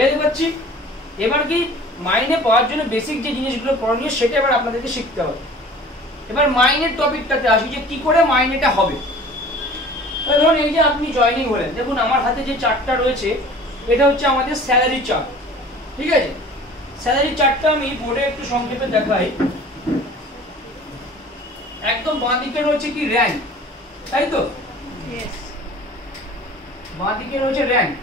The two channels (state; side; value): normal; both; correlation 0.45